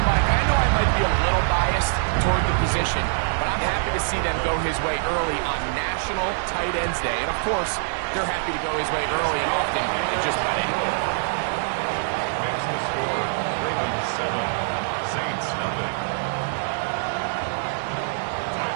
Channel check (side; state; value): left; silent; digital silence